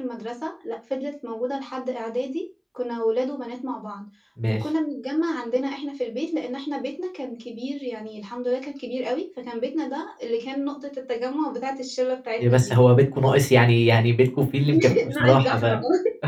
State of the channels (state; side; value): identical; both; correlation 1.00